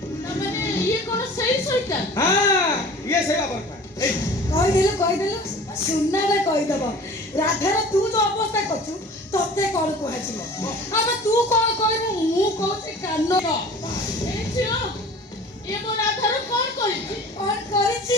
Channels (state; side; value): normal; both; correlation 0.43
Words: ମାନେ ଇଏ କଣ ସେଇ ସଇତା? ହଁ ଇଏ ସେଇ ବାबर କହିଦେଲୁ ସୁନାରେ କହିଦବ। ରାଧାର ତୁ ଯୋଉ ଅବସ୍ଥା କରୁଛୁ ତତେ କଣ କୁହାଯିବ? ଆମେ ତୁ କଣ କହିବୁ? ମୁଁ କହୁଛି କାନ ଏ ଝିଅ ଏ ମୋ ରାଧାର କଣ କରିଛି? କଣ